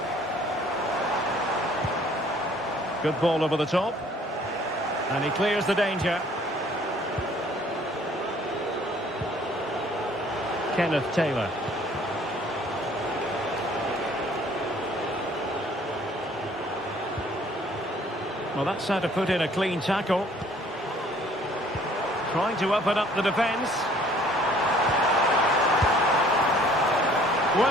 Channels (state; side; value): normal; both; correlation 0.57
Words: Good ball over the top. And he clears the danger. Kenneth Taylor. Well, that's how to put in a clean tackle. Trying to open up the defence.